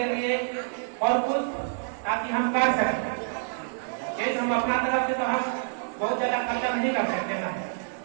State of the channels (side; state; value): left; silent; digital silence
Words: लिए और कुछ ताकि हम कर सकें। हम अपना तरफ से तो हम बहुत ज्यादा खर्चा नहीं कर सकते ना,